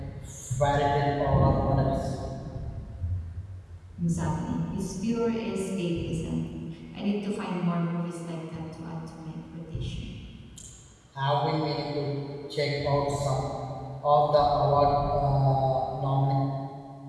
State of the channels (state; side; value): identical; both; correlation 1.00